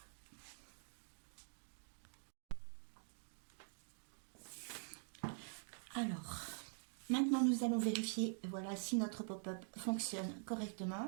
Alors, maintenant nous allons vérifier, voilà, si notre pop-up fonctionne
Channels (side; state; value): left; silent; digital silence